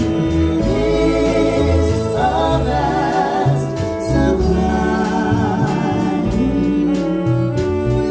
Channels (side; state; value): both; identical; correlation 1.00